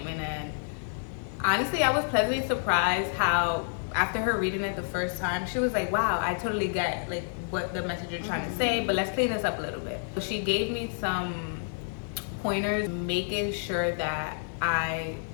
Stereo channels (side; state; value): right; silent; 56 dB below the other